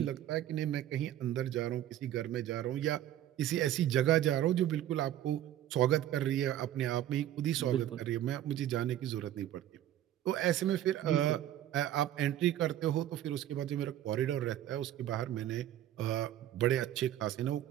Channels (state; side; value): quieter; left; 12.3 dB